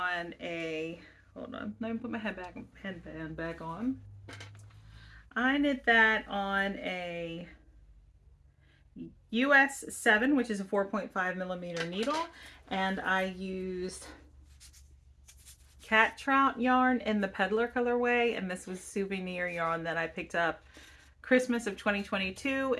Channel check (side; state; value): both; identical; correlation 1.00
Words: a, hold on, let me put my headband back on. I knit that on a US 7, which is a 4.5 millimeter needle, and I used cat trout yarn in the peddler colorway, and this was souvenir yarn that I picked up Christmas of 2022